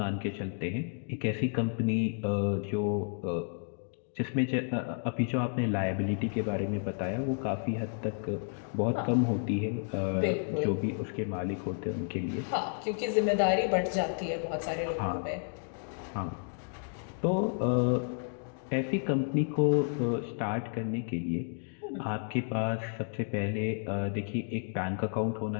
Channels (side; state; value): right; silent; 57 dB below the other